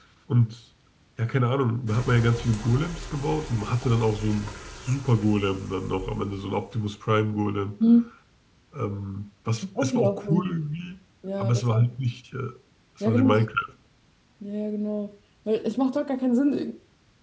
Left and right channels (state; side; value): identical; both; correlation 1.00